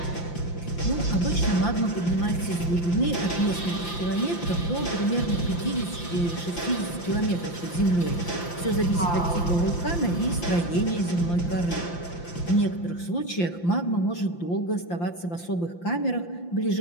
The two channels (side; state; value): right; late; 5.8 ms